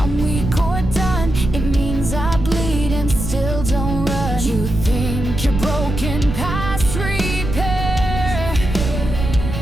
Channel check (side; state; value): right; noise; rumble, 5 dB below the sound